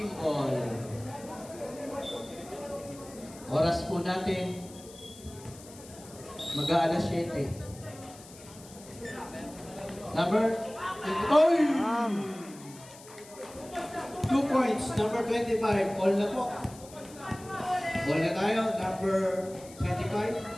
Oras po natin. Mag-aalas 7. Number... Oy! 2 points. Number 25. All na po. All na tayo. Number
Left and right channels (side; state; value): left; noise; hiss, 19 dB below the sound